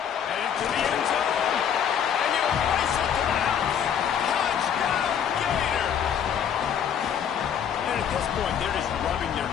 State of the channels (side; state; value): right; quieter; 8.5 dB